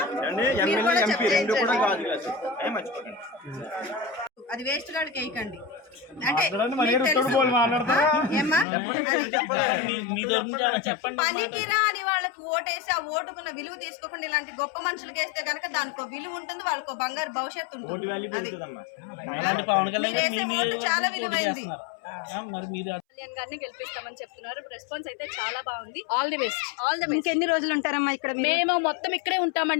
అది వేస్ట్ గాడికి వేయకండి అంటే పనికిరా అని వాళ్ళకి ఓటేసి ఆ ఓటుకున్న విలువ తీసుకోకుండా ఇలాంటి గొప్ప మనుషులకి వేస్తే గనక దానికి విలువ ఉంటుంది, వాళ్ళకు బంగారు భవిష్యత్తు ఉంటుంది. చాలా విలువైంది. గారిని గెలిపిస్తామని చెప్తున్నారు. రెస్పాన్స్ అయితే చాలా బాగుంది. All the best. ఇంకెన్ని రోజులు ఉంటారమ్మా ఇక్కడ? మేము మొత్తం ఇక్కడే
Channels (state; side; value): drops out; right; at 8.7 s